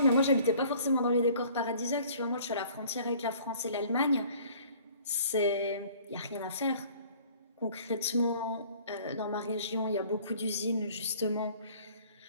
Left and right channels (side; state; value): both; inverted; correlation -0.53